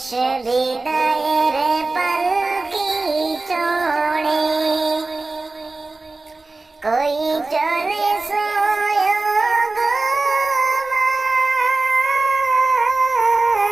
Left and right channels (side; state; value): left; quieter; 3.4 dB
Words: বিদায়ের পালকি চড়ে কই চলে